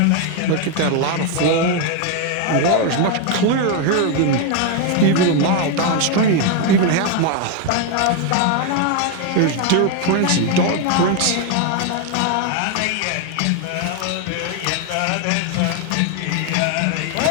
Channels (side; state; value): both; different; correlation 0.01